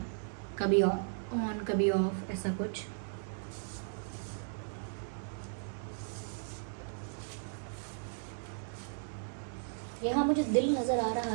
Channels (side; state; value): left; silent; 54 dB below the other